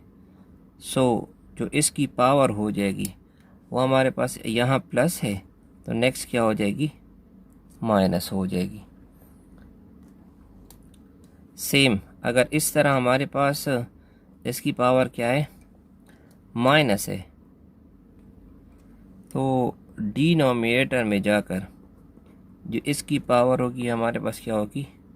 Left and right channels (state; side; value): identical; both; correlation 1.00